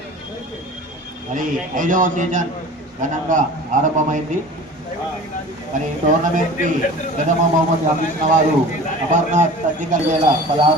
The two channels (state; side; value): normal; both; correlation 0.40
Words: మరి 5వ సీజన్ ఘనంగా ఆరంభమైంది. మరి టోర్నమెంట్ కి ప్రథమ బహుమతి అందించిన వారు అమర్నాథ్ సర్జికల్ వేల